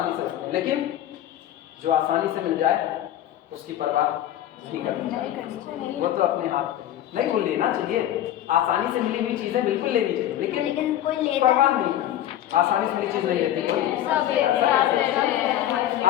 से रखते हैं, लेकिन जो आसानी से मिल जाए उसकी परवाह नहीं करनी चाहिए, वो तो अपने हाथ नहीं, वो लेना चाहिए। आसानी से मिली हुई चीजें बिल्कुल लेनी चाहिए, लेकिन परवाह नहीं करनी। आसानी से मिली चीज नहीं लेती कोई।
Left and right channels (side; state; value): right; quieter; 12.2 dB